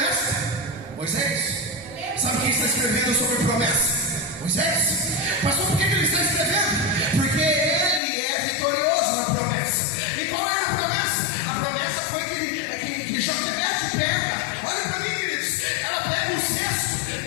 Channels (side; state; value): right; drops out; at 8.0 s